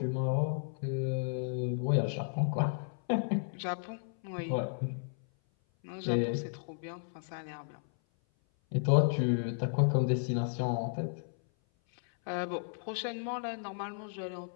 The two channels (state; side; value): silent; right; 55 dB below the other